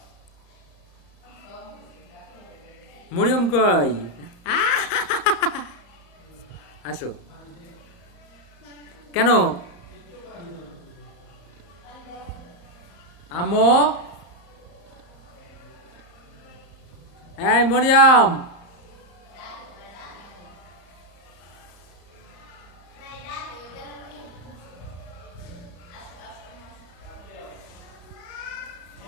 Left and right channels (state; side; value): late; right; 34 ms